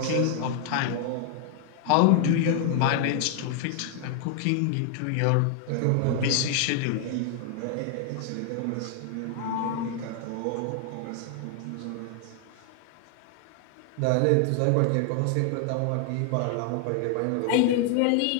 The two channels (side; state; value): both; different; correlation 0.00